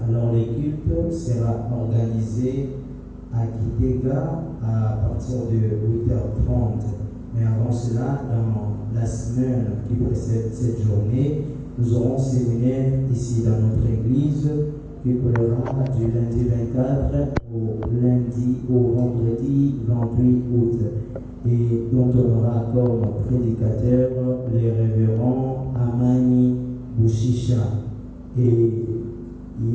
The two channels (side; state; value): both; identical; correlation 1.00